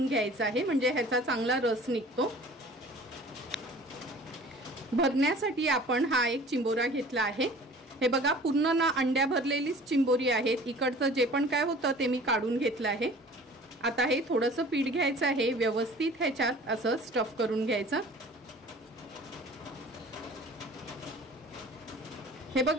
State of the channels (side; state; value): both; normal; correlation 0.46